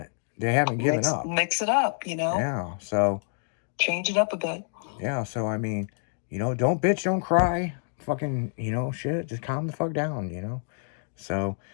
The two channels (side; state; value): right; silent; digital silence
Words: They haven't given up. Mix it up, you know. Yeah. So Change it up a bit. yeah. So I mean, you know, don't bitch, don't cry. Fucking, you know, shit. Just calm the fuck down, you know. So,